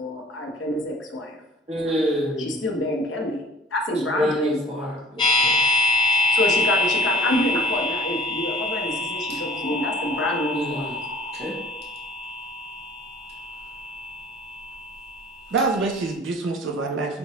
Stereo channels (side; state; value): both; normal; correlation 0.50